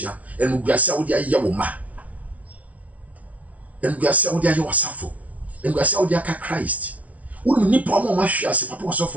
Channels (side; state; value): left; late; 0.068 ms